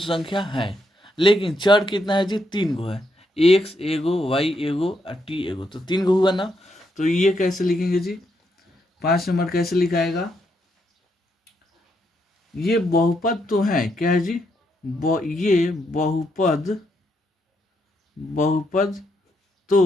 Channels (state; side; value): normal; both; correlation 0.78